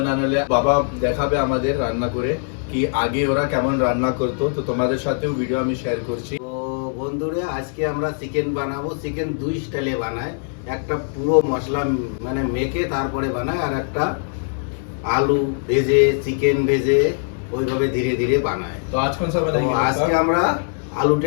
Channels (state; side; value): silent; right; digital silence